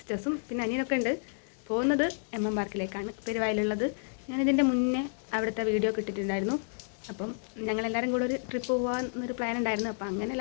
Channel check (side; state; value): right; silent; digital silence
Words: പിന്നെ അനിയനൊക്കെ ഉണ്ട്. പോകുന്നത് MM പാർക്കിലേക്കാണ്, പെരുവായിലുള്ളത്. ഞാനിതിൻ്റെ മുന്നേ അവിടുത്തെ വീഡിയോ കിട്ടിയിട്ടുണ്ടായിരുന്നു. അപ്പം ഞങ്ങളെല്ലാവരും കൂടെ ഒരു ട്രിപ്പ് പോകാമെന്നൊരു പ്ലാൻ ഉണ്ടായിരുന്നു. അപ്പം അങ്ങനെ